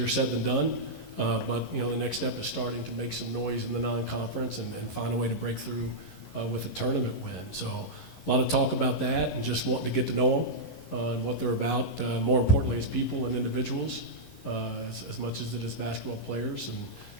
said than done, but, you know, the next step is starting to make some noise in the non-conference and find a way to break through with a tournament win. So lot of talk about that and just wanting to get to know them and what they're about, more importantly as people and individuals, as much as it is basketball players,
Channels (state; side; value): late; right; 11 ms